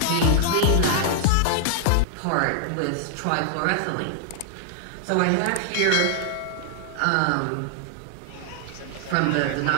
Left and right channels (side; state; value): both; different; correlation -0.01